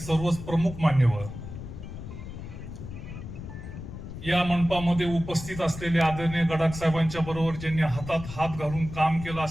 प्रमुख मान्यवर, या मंडपामध्ये उपस्थित असलेले आदरणीय गडाख साहेबांच्या बरोबर ज्यांनी हातात हात घालून काम केलं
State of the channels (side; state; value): left; noise; rumble, 10 dB below the sound